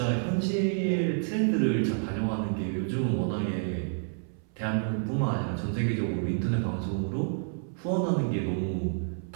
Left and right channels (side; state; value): left; silent; 59 dB below the other